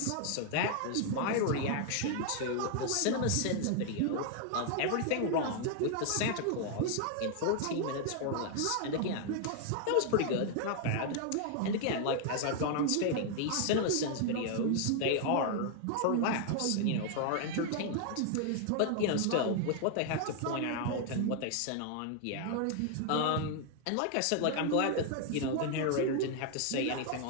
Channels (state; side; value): different; both; correlation 0.00